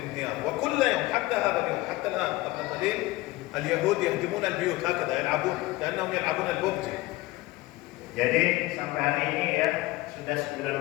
وكل يوم حتى هذا اليوم حتى الآن قبل قليل اليهود يهدمون البيوت هكذا يلعبون كأنهم يلعبون الببجي. Jadi sampai hari ini ya sudah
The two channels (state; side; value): quieter; right; 19.8 dB